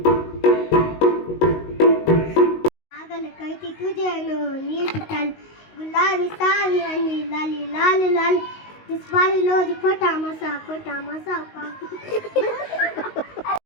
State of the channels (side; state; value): right; late; 19 ms